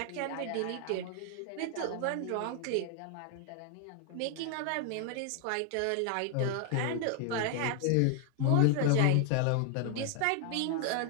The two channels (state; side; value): different; both; correlation 0.00